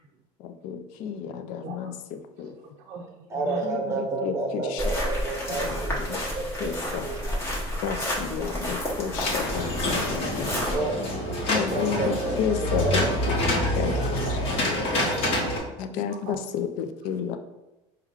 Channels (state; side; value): normal; both; correlation 0.32